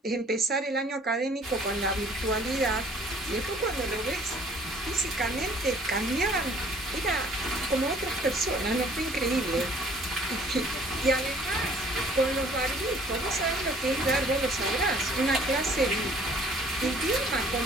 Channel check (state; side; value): normal; both; correlation 0.56